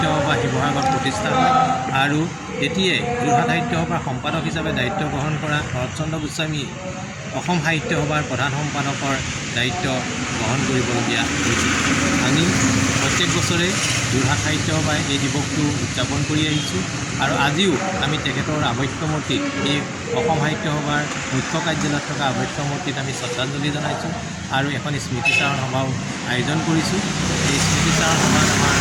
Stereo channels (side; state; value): both; identical; correlation 1.00